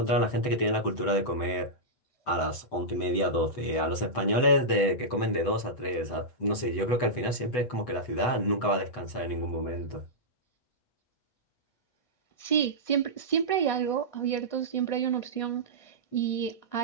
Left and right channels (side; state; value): right; late; 8.0 ms